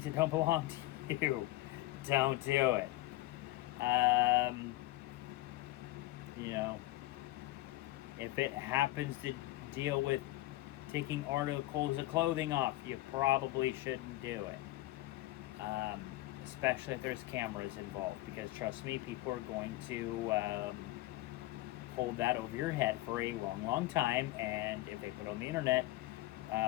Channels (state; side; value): quieter; right; 17.4 dB